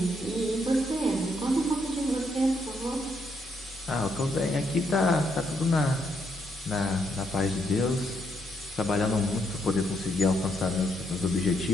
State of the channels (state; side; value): normal; both; correlation 0.76